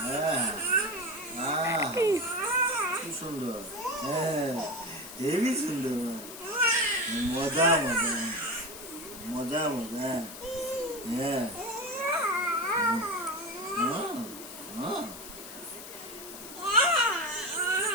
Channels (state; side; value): noise; left; hiss, 13 dB below the sound